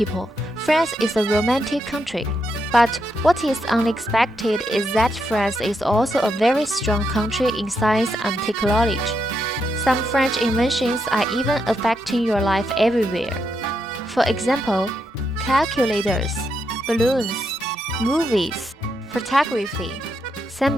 France is a romantic country. But what is unexpected is that France is also a very strong country in science and technology. Some French inventions are even affecting your life everywhere. For example, calculators, balloons, movies, photography,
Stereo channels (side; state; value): both; normal; correlation 0.81